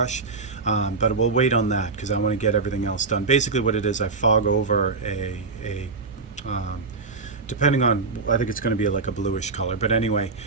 but we'll wait on that because I want to get everything else done. Basically, what it is, I fog over a depending on, I think it's going to be like a bluish color, but anyway,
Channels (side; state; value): left; quieter; 4.2 dB